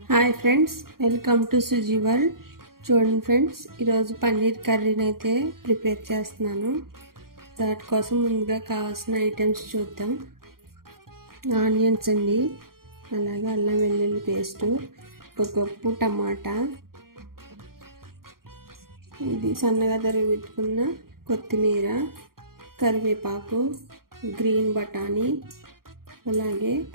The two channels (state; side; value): late; left; 0.92 ms